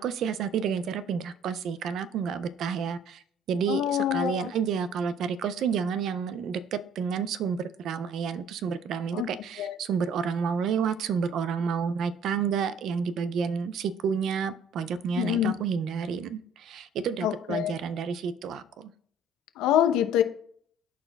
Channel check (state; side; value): normal; both; correlation 0.54